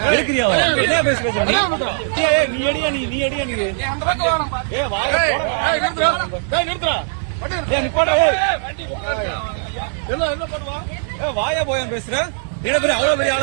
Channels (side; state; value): left; silent; 66 dB below the other